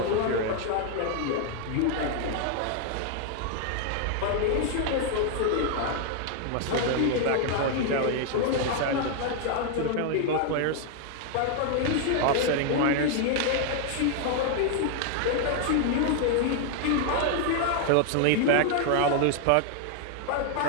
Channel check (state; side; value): different; both; correlation 0.00